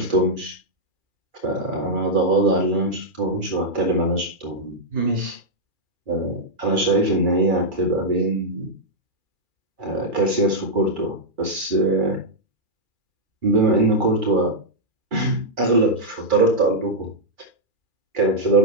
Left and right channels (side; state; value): left; late; 2.4 ms